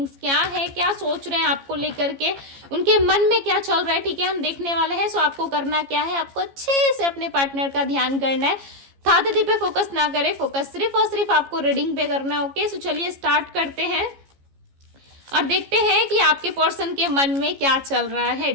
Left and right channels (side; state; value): left; late; 15 ms